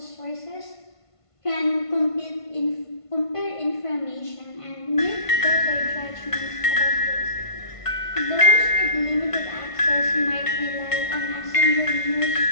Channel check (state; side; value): late; right; 1.5 ms